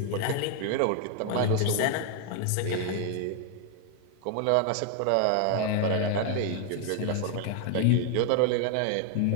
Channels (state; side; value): different; both; correlation 0.00